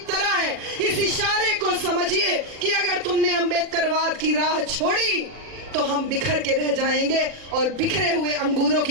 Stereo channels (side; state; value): left; late; 40 ms